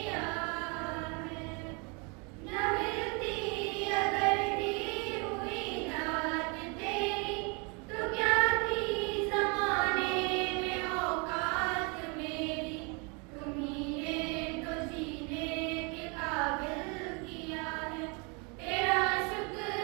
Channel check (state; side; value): quieter; left; 32.3 dB